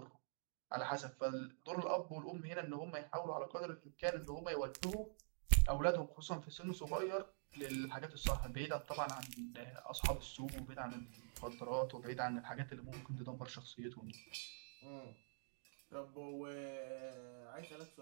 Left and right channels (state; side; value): silent; left; digital silence